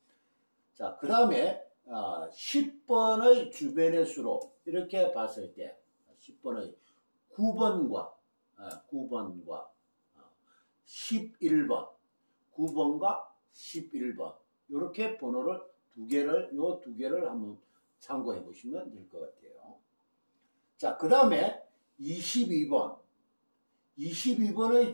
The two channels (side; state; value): both; inverted; correlation -1.00